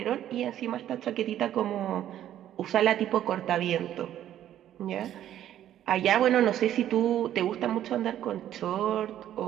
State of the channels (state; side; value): quieter; left; 11.6 dB